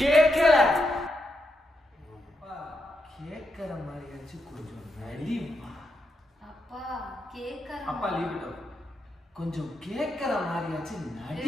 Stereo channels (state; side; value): normal; both; correlation 0.83